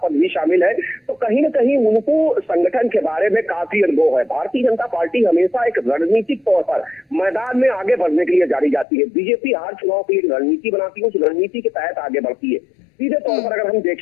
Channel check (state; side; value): drops out; right; at 8.8 s